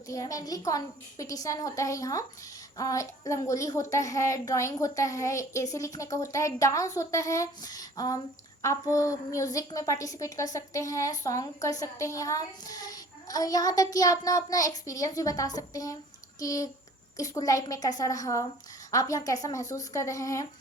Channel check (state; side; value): normal; both; correlation 0.50